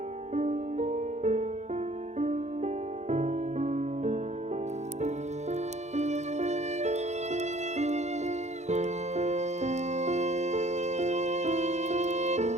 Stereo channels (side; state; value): left; late; 0.33 ms